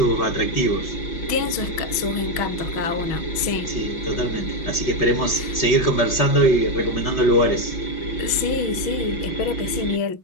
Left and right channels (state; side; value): late; right; 6.2 ms